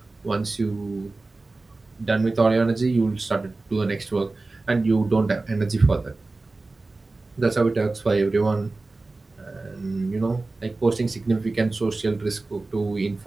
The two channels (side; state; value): left; quieter; 3.4 dB